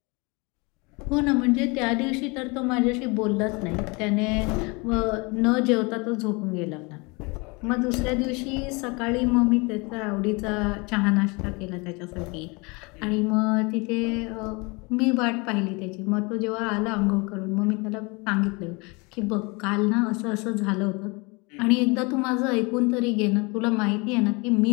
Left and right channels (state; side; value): quieter; right; 28.0 dB